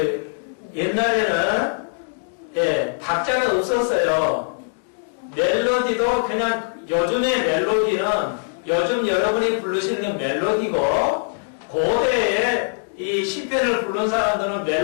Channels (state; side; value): silent; right; digital silence